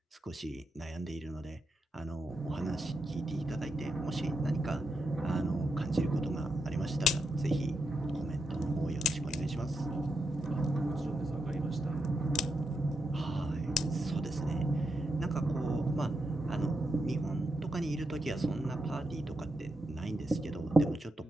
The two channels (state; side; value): normal; both; correlation 0.84